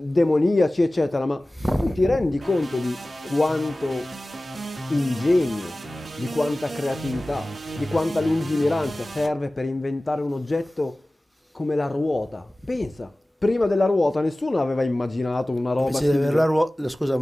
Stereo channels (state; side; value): normal; both; correlation 0.97